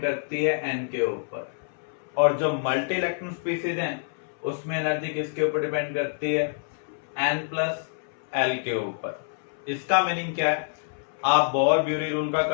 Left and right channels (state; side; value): silent; right; 60 dB below the other